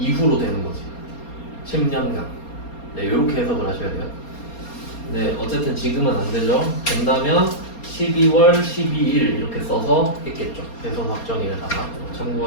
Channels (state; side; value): late; right; 4.3 ms